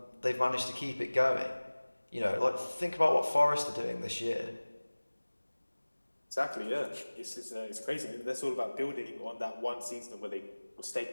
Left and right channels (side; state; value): both; inverted; correlation -1.00